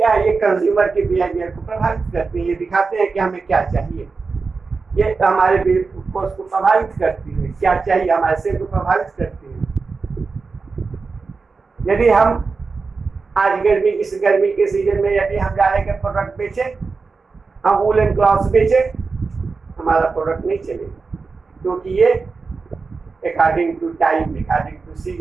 है, ये कंज्यूमर के बिहेवियर को प्रभावित करते हैं। ये दिखाते हैं कि हमें क्या चाहिए, ये हमारे को प्रभावित करती है, क्या चाहिए हमारे से को प्रभावित करती है। यदि हम आज इस गर्मी के सीजन में यदि हम जा रहे हैं प्रोडक्ट बेचे, हम वूलन क्लॉथ्स बेचे, हमारा प्रोडक्ट नहीं चलेगा, क्योंकि ये according to time, according to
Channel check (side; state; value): left; quieter; 4.4 dB